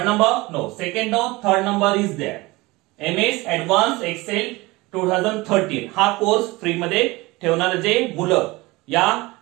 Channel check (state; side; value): quieter; left; 22.0 dB